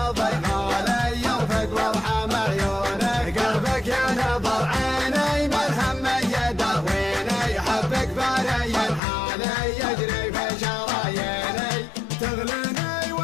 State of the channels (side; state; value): right; drops out; at 9.0 s